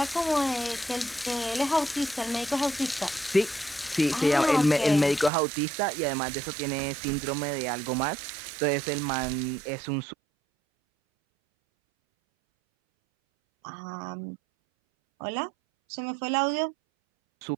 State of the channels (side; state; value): left; drops out; at 5.3 s